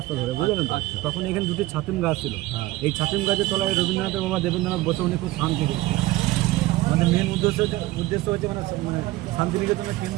ধরে, বুঝলেন তো? তখন এখানে 2টি ছাতিম গাছ ছিল। এই ছাতিম গাছের তলায় রবীন্দ্রনাথের বাবা দেবেন্দ্রনাথ বসে উনি খুব শান্তি পেয়েছেন। আমাদের মেন উদ্দেশ্য হচ্ছে মানে শান্তিনিকেতনের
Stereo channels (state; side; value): quieter; left; 18.2 dB